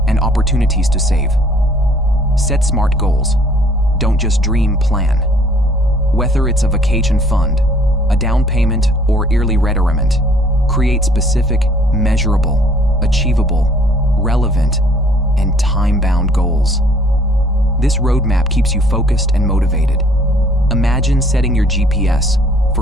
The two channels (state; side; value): normal; both; correlation 0.58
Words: and opportunities to save. Set smart goals. Don't just dream, plan. Whether it's a vacation fund, a down payment, or yearly retirement, create specific, measurable, achievable, relevant, and time-bound goals. This roadmap keeps you focused and motivated. Imagine setting your GPS